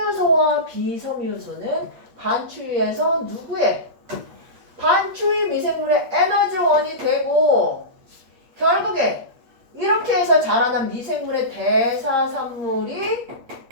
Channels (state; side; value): late; left; 8.5 ms